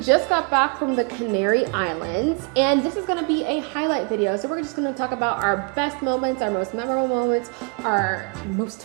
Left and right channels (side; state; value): left; quieter; 34.5 dB